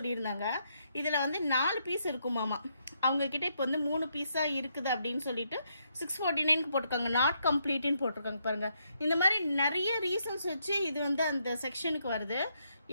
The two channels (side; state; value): both; inverted; correlation -0.77